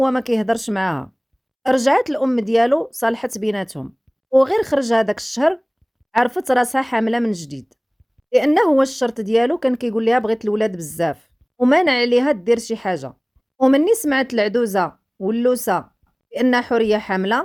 ما كيهضرش معاها. رجعت الام ديالو صالحت بيناتهم، وغير خرج هذاك الشهر عرفت راسها حامله من جديد، لانه هو الشرط ديالو كان كيقول لها بغيت الولاد بزاف ومانع عليها دير شي حاجه. ومني سمعت العدوزه واللوسه بان حوريه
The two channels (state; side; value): identical; both; correlation 1.00